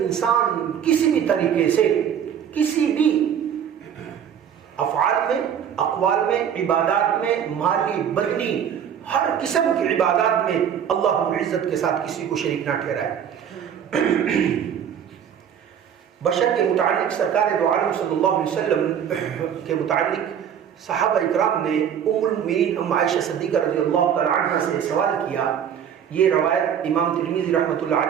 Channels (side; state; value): left; quieter; 8.6 dB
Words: انسان کسی بھی طریقے سے کسی بھی افعال میں، اقوال میں، عبادات میں، مالی بدنی ہر قسم کی عبادات میں اللہ رب العزت کے ساتھ کسی کو شریک نہ ٹھہرائے. بشر کے متعلق سرکار دو عالم صلی اللہ علیہ وسلم کے متعلق صحابہ اکرام نے ام المؤمنین ام عائشہ صدیقہ رضی اللہ تعالی عنہ سے سوال کیا. یہ روایت امام ترمذی رحمۃ اللہ